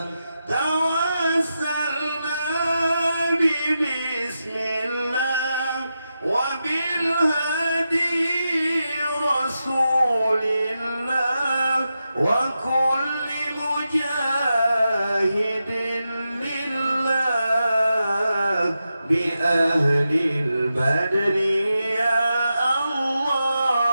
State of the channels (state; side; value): inverted; both; correlation -0.89